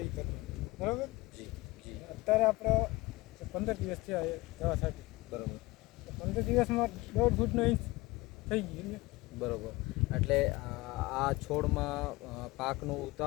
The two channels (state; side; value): quieter; right; 21.1 dB